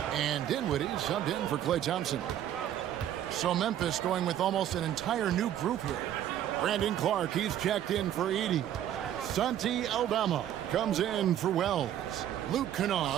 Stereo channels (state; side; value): quieter; left; 11.1 dB